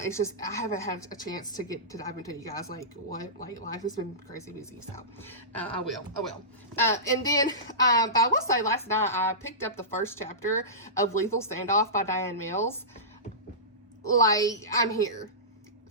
just, I haven't had a chance to dive into you guys, like, what, like, life has been crazy busy, so I will. And then, but I will say, last night, I picked up the first chapter of Lethal Standoff by Diane Mills. Like, I'm here.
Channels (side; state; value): both; normal; correlation -0.20